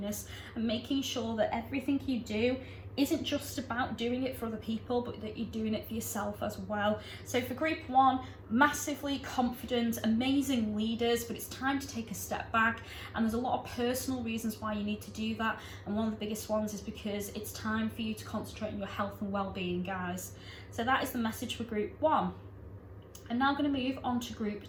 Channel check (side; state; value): both; identical; correlation 1.00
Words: and making sure that everything you do isn't just about doing it for other people, but that you're doing it for yourself as well. So for group 1, massively confident, amazing leaders, but it's time to take a step back, and there's a lot of personal reasons why you need to do that, and one of the biggest ones is because it's time for you to concentrate on your health and well-being, guys. So that is the message for group 1. I'm now going to move on to group